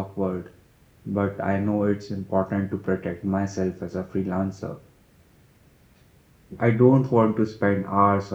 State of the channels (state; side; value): identical; both; correlation 1.00